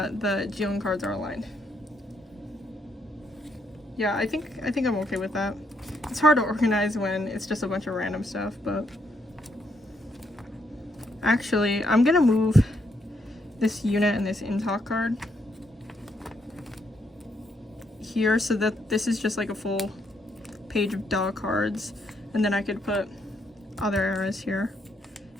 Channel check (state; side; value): normal; both; correlation 0.75